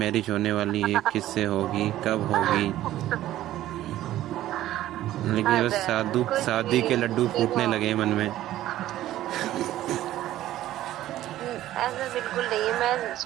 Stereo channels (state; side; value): quieter; left; 13.9 dB